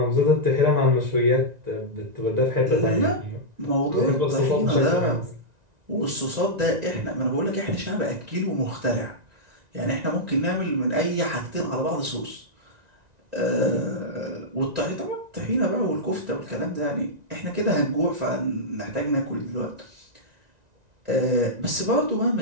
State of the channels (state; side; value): late; left; 1.9 ms